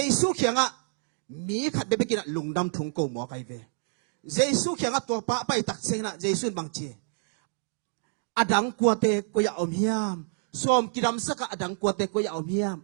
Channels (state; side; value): silent; left; digital silence